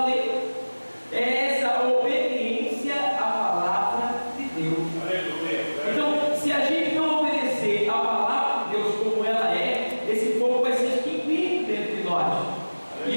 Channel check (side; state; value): both; inverted; correlation -1.00